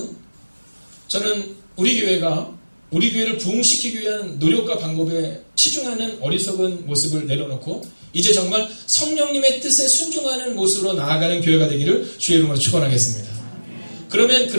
저는 우리 교회를 부흥시키기 위한 노력과 방법에 치중하는 어리석은 모습을 내려놓고 이제 정말 성령님의 뜻에 순종하는 모습으로 나아가는 교회가 되기를 주의 이름으로 축원하겠습니다. 그러면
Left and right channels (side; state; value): both; inverted; correlation -1.00